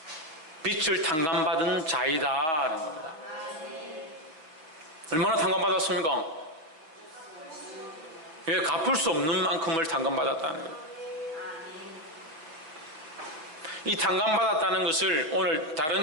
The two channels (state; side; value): late; left; 6.2 ms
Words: 빛을 탕감받은 자이다라는 겁니다. 얼마나 탕감받았습니까? 왜 갚을 수 없는 만큼을 탕감받았다는 거예요. 이 탕감받았다는 것을 오늘